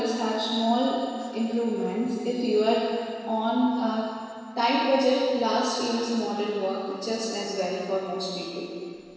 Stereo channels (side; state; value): both; identical; correlation 1.00